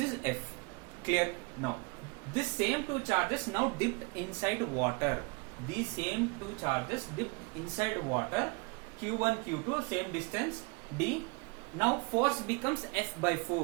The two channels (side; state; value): left; quieter; 28.9 dB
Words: F. Clear? Now this same two charges now dipped inside water. These same two charges dipped inside water. Q1, Q2, same distance d. Now force becomes F by